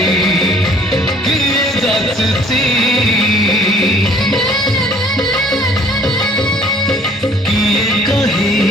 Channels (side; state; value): both; normal; correlation 0.55